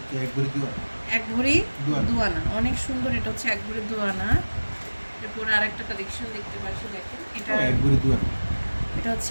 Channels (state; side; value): inverted; both; correlation -1.00